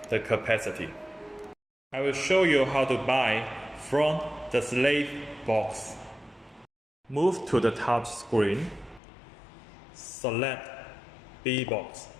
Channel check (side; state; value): right; drops out; at 9.0 s